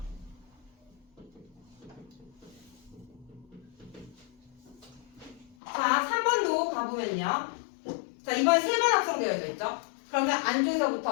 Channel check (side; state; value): right; drops out; at 5.6 s